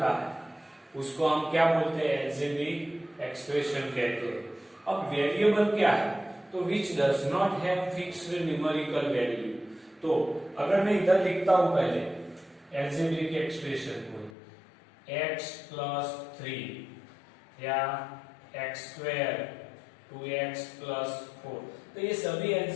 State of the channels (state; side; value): drops out; right; at 14.3 s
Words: है उसको हम क्या बोलते हैं? एल्जेब्रिक एक्सप्रेशन कहते हैं। अब वेरिएबल क्या है? तो which does not have fixed numerical value. तो अगर मैं इधर लिखता हूं पहले एल्जेब्रिक एक्सप्रेशन को x प्लस 3 या x स्क्वायर 2x प्लस 4, तो ये सभी